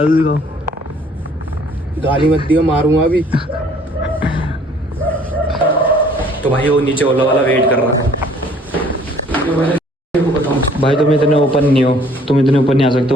दिखाओ। गाली मत दियो, मारूंगा अभी। तो भाई वो नीचे ओला वाला वेट कर रहा है। भाई तुम इतने ओपन नहीं हो, तुम इतने ऊपर नहीं आ सकते।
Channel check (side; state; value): both; normal; correlation 0.58